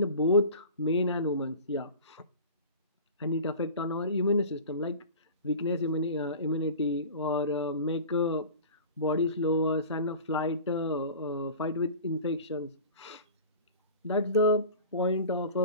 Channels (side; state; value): both; inverted; correlation -0.38